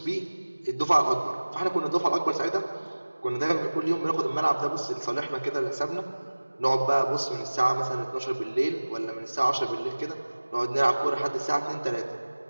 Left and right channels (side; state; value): both; inverted; correlation -1.00